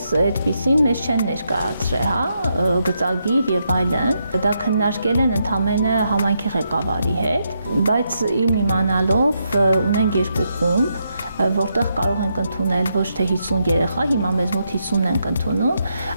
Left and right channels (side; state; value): both; inverted; correlation -0.81